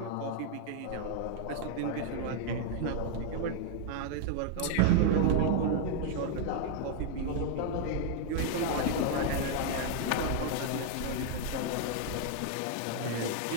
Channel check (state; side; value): different; both; correlation 0.00